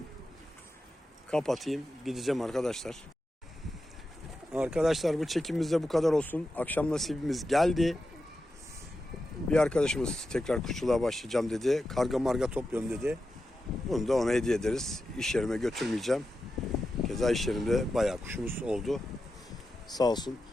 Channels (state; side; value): normal; both; correlation 0.90